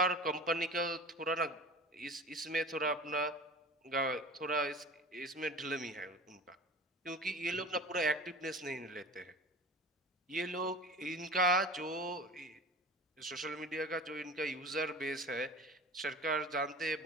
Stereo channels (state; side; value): normal; both; correlation 0.38